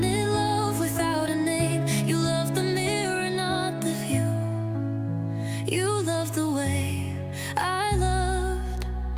love without a name. You loved the mirror, not the view. You loved the way I loved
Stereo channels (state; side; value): identical; both; correlation 1.00